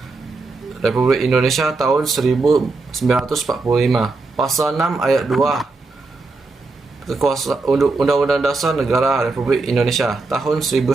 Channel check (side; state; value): left; quieter; 3.7 dB